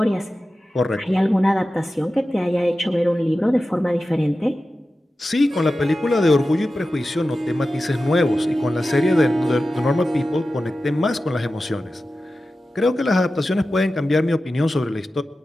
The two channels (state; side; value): normal; both; correlation 0.94